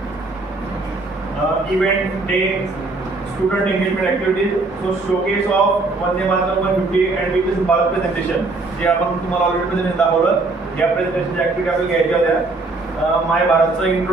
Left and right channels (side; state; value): left; quieter; 3.4 dB